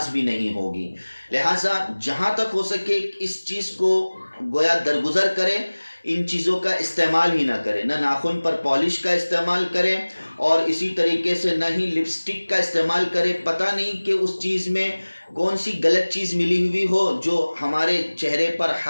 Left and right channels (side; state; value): both; inverted; correlation -1.00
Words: بھی نہیں ہوگی۔ لہٰذا جہاں تک ہو سکے اس چیز کو گویا درگزر کریں، ان چیزوں کا استعمال ہی نہ کریں، نہ ناخن پر پالش کا استعمال کریں اور اسی طریقے سے نہ ہی لپسٹک کا استعمال کریں۔ پتہ نہیں کہ اس چیز میں کون سی غلط چیز ملی ہوئی ہو جو ہمارے چہرے پر